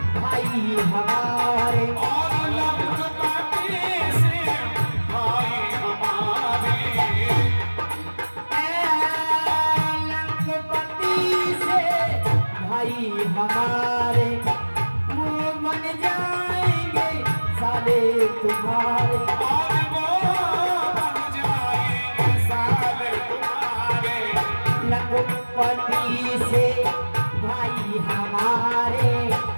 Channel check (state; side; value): inverted; both; correlation -1.00